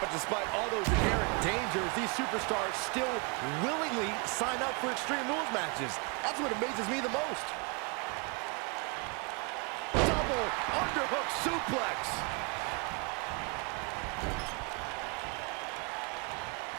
despite all those inherent dangers, these superstars still willingly sign up for Extreme Rules matches. That's what amazes me the most. Double underhook suplex.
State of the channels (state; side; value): quieter; left; 32.8 dB